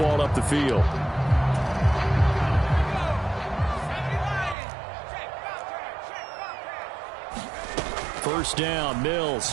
up the field. First down,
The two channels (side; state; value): left; drops out; at 4.5 s